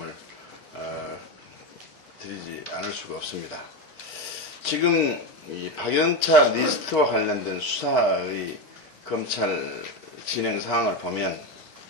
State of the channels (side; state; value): both; normal; correlation 0.15